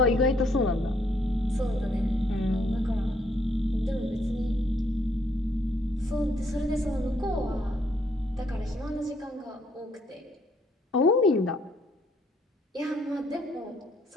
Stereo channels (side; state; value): both; normal; correlation 0.69